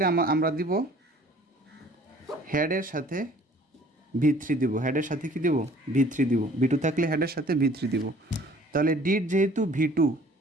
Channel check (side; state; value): both; normal; correlation 0.53